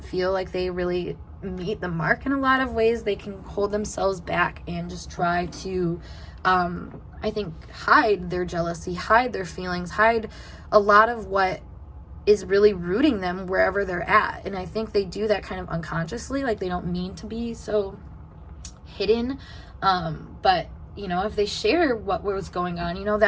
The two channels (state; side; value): identical; both; correlation 1.00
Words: feel like they really meet the mark in a lot of ways. They can hold themselves back and just try to I think hide their jealousy, hide their feelings, hide a lot of what is really rooting them wherever they're at. And I think they do that kind of unconsciously, like they don't mean to be so hidden, but you know, if they share what was going on, you know,